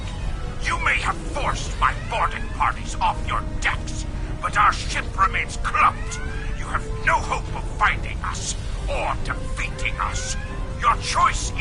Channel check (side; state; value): both; identical; correlation 1.00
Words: You may have forced my boarding parties off your decks, but our ship remains clumped. You have no hope of finding us or defeating us. Your choice